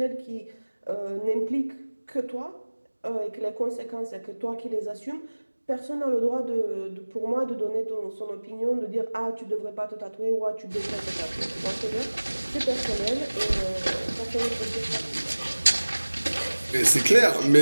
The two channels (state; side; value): inverted; both; correlation -1.00